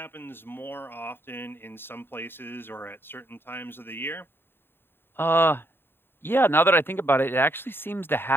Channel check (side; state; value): right; late; 0.11 ms